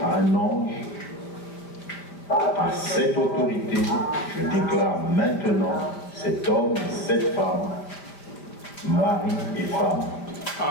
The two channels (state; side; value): late; right; 5.0 ms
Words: un ange, par cette autorité, je déclare maintenant cet homme et cette femme, mari et femme.